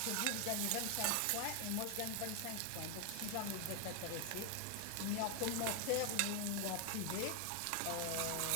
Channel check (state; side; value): different; both; correlation 0.00